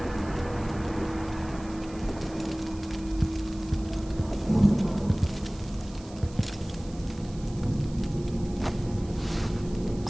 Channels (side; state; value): right; noise; hiss, 21 dB below the sound